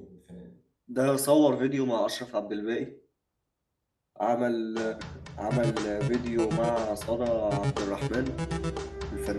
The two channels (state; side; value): identical; both; correlation 1.00